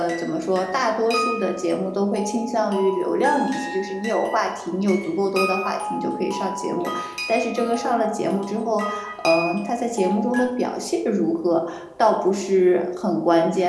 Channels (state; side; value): identical; both; correlation 1.00